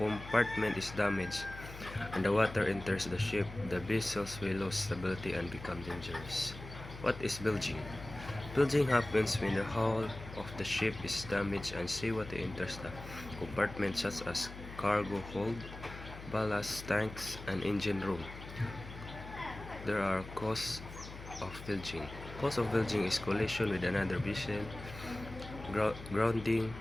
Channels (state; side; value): noise; left; hum, 13 dB below the sound